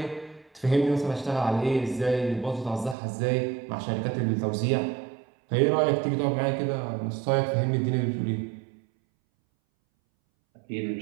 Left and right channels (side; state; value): left; drops out; at 3.0 s